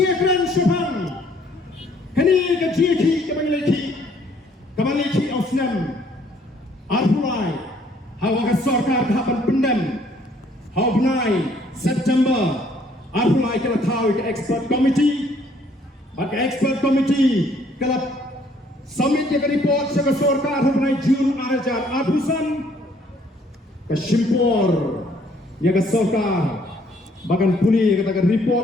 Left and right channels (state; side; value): normal; both; correlation 0.63